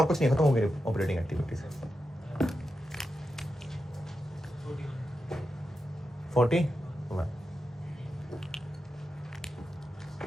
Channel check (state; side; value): normal; both; correlation 0.89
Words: कुछ नहीं, खत्म हो गई ऑपरेटिंग एक्टिविटीज। 40